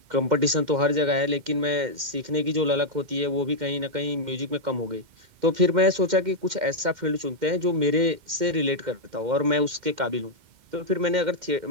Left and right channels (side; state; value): left; late; 2.1 ms